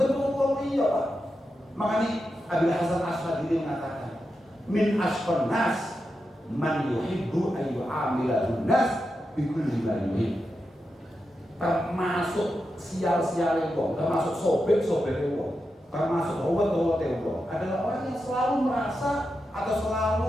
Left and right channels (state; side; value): normal; both; correlation 0.88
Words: iya Pak. Makanya Abil Hasan Asy'adili mengatakan, min asqan nas man yuhibbu an yu'amilahun nas bikulli ma yuhib. Termasuk sial-sial wong, termasuk sobek-sobek wong, termasuk howat-howat wong adalah orang yang selalu merasa atau